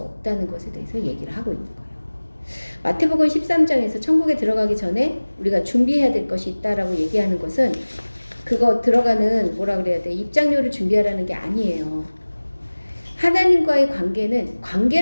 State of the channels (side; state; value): both; inverted; correlation -1.00